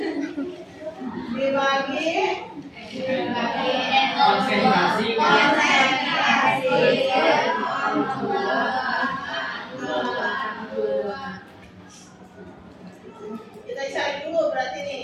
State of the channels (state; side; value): identical; both; correlation 1.00